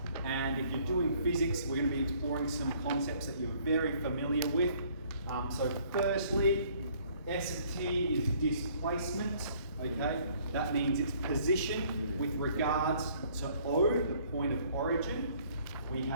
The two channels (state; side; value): inverted; both; correlation -0.60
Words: And if you're doing physics, we're going to be exploring some concepts that you're very familiar with. So firstly, S of t is displacement. Okay, that means its position with regards to O, the point of origin. We